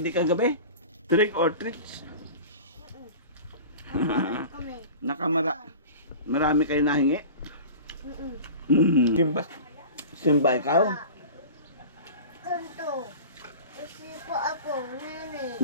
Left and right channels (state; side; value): inverted; both; correlation -0.36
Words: kagabi? Trick or treats? Marami kayo nahingi? Simba ikaw? Kanto. Kasi po ako, nene.